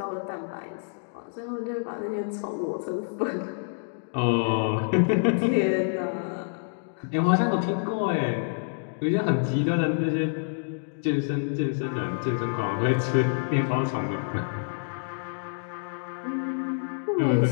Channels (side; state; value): right; silent; digital silence